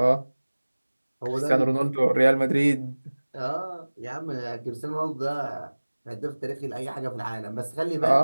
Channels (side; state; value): both; inverted; correlation -1.00